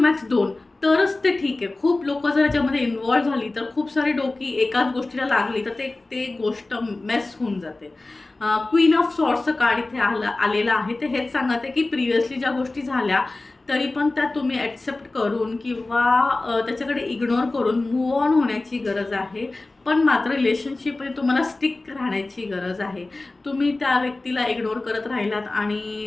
2, तरच ते ठीक आहे. खूप लोक जर याच्यामध्ये इन्वॉल्व्ह झाली तर खूप सारी डोकी एकाच गोष्टीला लागली तर ते गोष्ट मेस होऊन जाते. क्वीन ऑफ सॉर्ट्सचं कार्ड इथे आलेलं आहे. ते हेच सांगत आहे की प्रिव्हियसली ज्या गोष्टी झाल्या तरी पण त्या तुम्ही ॲक्सेप्ट करून किंवा त्याच्याकडे इग्नोर करून मूव ऑन होण्याची गरज आहे. पण मात्र रिलेशनशिपमध्ये तुम्हाला स्टिक राहण्याची गरज आहे. तुम्ही त्या व्यक्तीला इग्नोर करत राहिलात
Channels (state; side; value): quieter; right; 3.1 dB